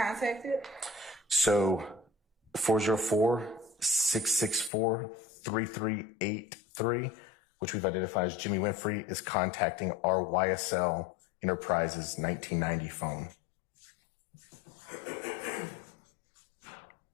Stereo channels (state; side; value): drops out; right; at 4.7 s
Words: So 404-664-3383, which we've identified as Jimmy Winfrey, is contacting our YSL Enterprises 1990 phone.